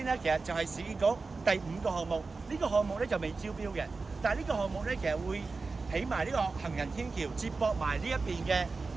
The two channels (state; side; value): quieter; left; 4.0 dB